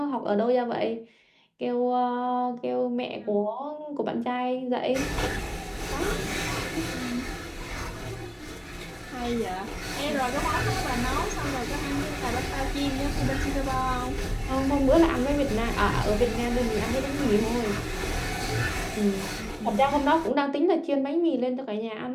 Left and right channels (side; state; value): both; identical; correlation 1.00